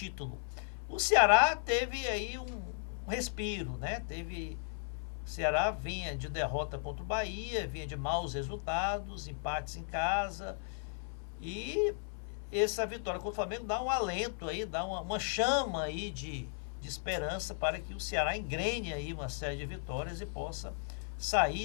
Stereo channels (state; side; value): silent; right; 54 dB below the other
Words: O Ceará teve aí um respiro, né? O Ceará vinha de derrota contra o Bahia, vinha de maus resultados, empates em casa, e essa vitória contra o Flamengo dá um alento aí, dá uma chama aí de esperança para que o Ceará engrene aí uma série de vitórias e possa